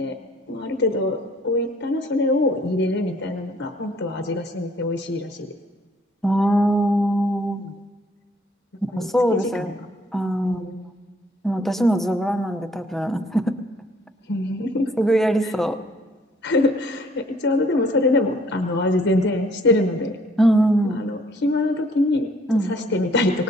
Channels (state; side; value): normal; both; correlation 0.61